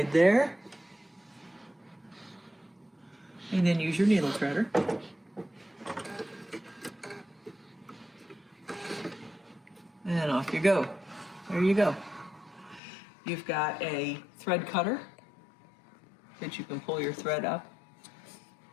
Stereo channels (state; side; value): drops out; right; at 12.8 s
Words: there. And then use your needle threader. And off you go. There you go. You've got a thread cutter that you can pull your thread up